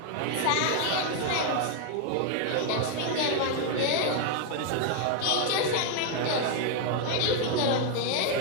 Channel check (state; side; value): different; both; correlation 0.00